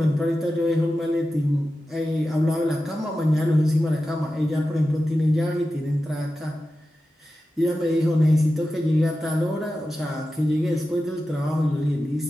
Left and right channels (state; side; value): normal; both; correlation 0.93